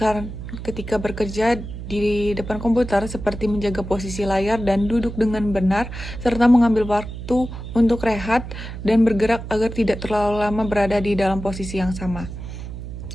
ketika bekerja di depan komputer, seperti menjaga posisi layar dan duduk dengan benar, serta mengambil waktu untuk rehat dan bergerak agar tidak terlalu lama berada di dalam posisi yang sama.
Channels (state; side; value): noise; right; hum, 9 dB below the sound